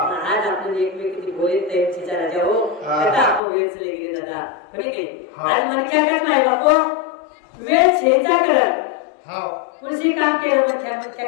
आपण एकमेकींची बोले त्यांची जरा जाओ आता आपण वेळ चले गेले दादा कोणी काही आज मन क्या कर माय बापो वेळ छेचा कर पुढची काम केलं मन क्या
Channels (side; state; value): right; drops out; at 3.4 s